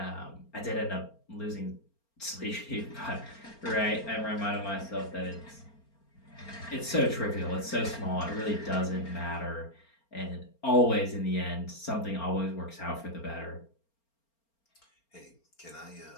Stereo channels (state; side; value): late; right; 4.4 ms